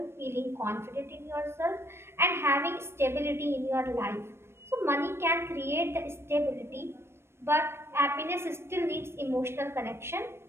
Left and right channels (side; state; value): left; late; 0.12 ms